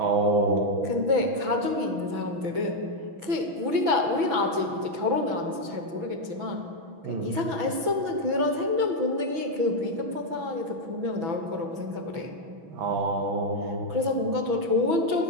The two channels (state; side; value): late; left; 6.1 ms